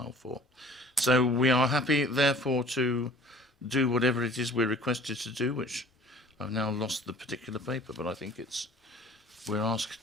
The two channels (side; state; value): both; normal; correlation 0.49